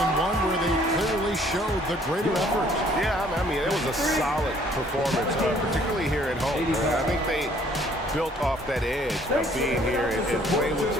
one where they clearly showed the greater effort. Yeah, I mean, it was a solid performance, particularly here at home. I think they built off that edge of being here and playing with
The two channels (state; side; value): normal; both; correlation 0.60